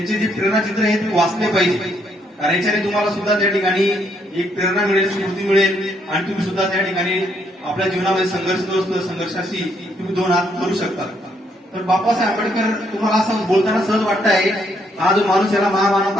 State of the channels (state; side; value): normal; both; correlation 0.72